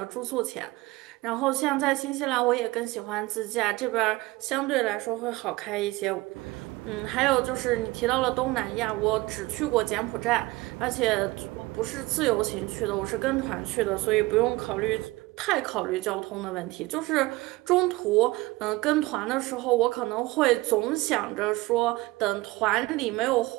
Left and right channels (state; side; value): quieter; left; 20.6 dB